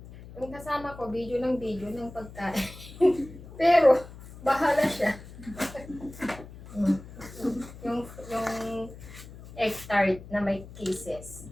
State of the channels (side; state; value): left; noise; hum, 16 dB below the sound